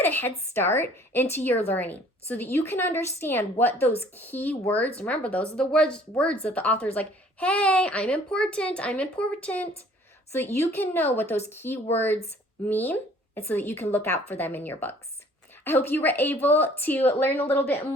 get a head start into your learning so that you can understand what those key words, remember those are the words that the author is like, hey, I'm important, so that you can know what those key words mean and so that you can look out for them in your books. I hope you were able to learn a little bit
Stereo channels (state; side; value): normal; both; correlation 0.55